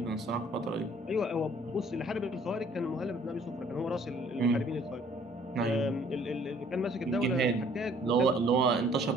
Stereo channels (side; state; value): both; normal; correlation 0.58